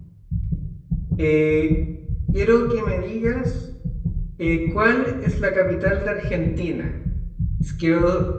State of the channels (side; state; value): both; identical; correlation 1.00